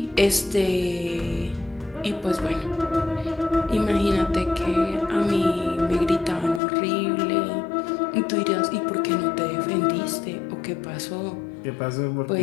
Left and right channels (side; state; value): right; drops out; at 6.6 s